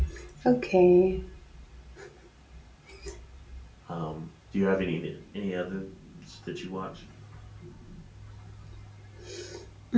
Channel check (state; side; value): identical; both; correlation 1.00